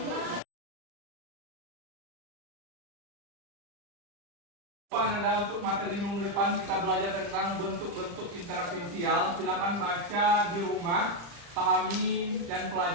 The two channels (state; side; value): late; left; 35 ms